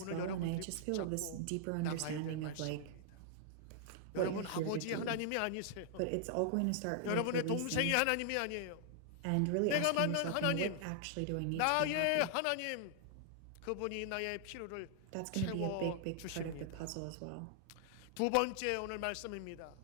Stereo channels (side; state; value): both; different; correlation -0.01